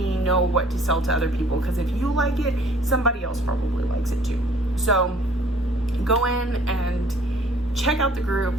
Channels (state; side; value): normal; both; correlation 0.56